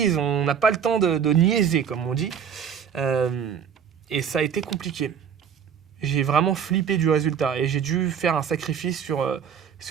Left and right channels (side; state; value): left; quieter; 7.7 dB